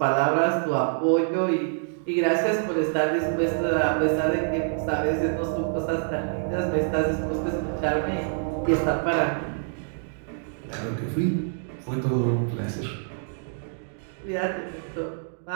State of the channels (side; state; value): left; silent; digital silence